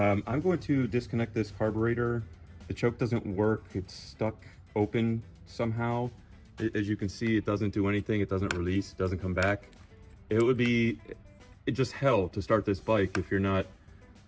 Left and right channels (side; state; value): both; identical; correlation 1.00